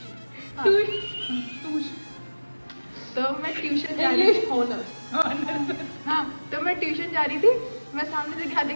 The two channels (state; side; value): inverted; both; correlation -1.00